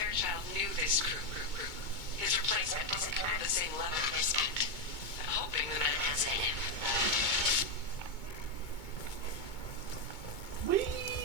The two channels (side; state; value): right; late; 2.2 ms